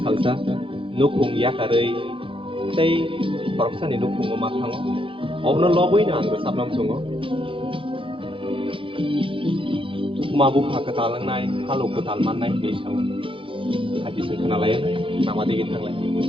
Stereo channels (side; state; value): left; late; 0.25 ms